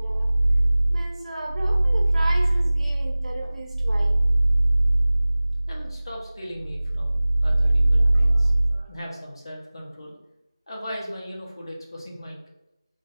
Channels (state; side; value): inverted; both; correlation -0.99